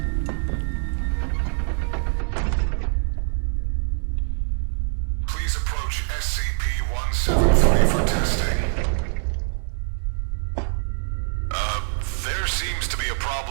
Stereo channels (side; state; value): left; silent; digital silence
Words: Please approach SCP-173 for testing. There seems to be a